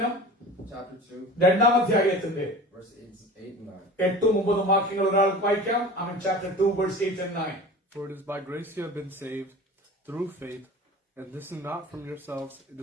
Chapter 2 2-ാം അധ്യായത്തിന്റെ verse 8 and 9. 8-9 വാക്യങ്ങൾ ഒരാൾക്ക് വായിക്കാം. Chapter 2 verse 8 and 9. For it is by grace you have been saved through faith, and this is not from yourselves, it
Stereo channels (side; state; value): both; normal; correlation 0.37